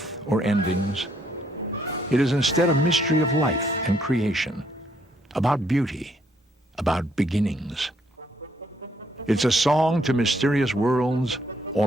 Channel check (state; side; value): normal; both; correlation 0.70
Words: or endings. It is instead a mystery of life and creation, about beauty, about beginnings. It's a song to mysterious worlds